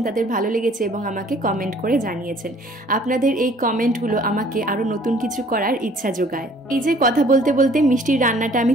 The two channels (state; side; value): normal; both; correlation 0.56